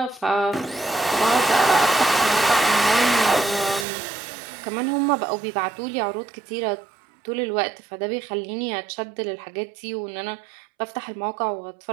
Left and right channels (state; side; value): drops out; left; at 3.9 s